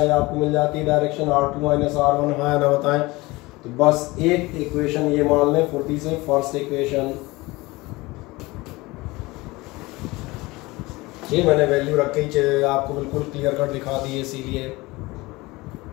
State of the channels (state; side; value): quieter; right; 21.8 dB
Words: ये आपको मिल जाती है डायरेक्शन R2 माइनस R1, हाँ ना? बताएं। तो बस एक इक्वेशन ये मान लें फुर्ती से, फर्स्ट इक्वेशन ये मैंने वैल्यू रख के आपको बिल्कुल क्लियर कट दिखा दी है, इसीलिए